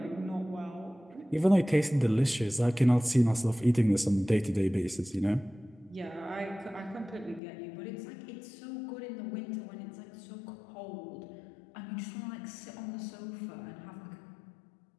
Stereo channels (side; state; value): right; drops out; at 7.4 s